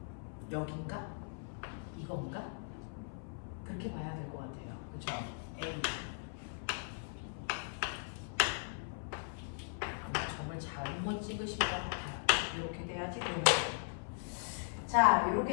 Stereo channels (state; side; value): silent; right; 52 dB below the other